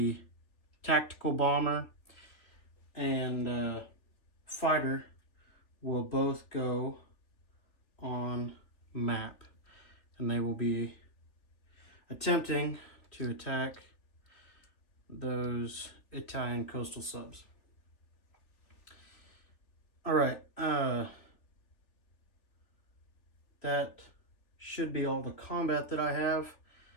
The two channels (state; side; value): late; right; 3.1 ms